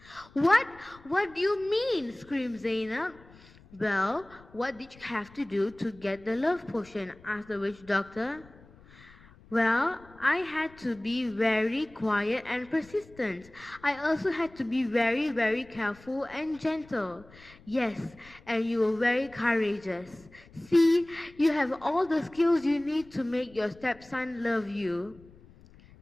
What? What do you mean? Screamed Zainab. Well, what did you have to do to get the love potion? Asked the witch doctor. Well, I had to be very quiet and persistent. I also had to be very, very careful and gentle. Yes, and you were very courageous. See, you have all the skills you need to make your stepson love you.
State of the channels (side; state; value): left; noise; rumble, 24 dB below the sound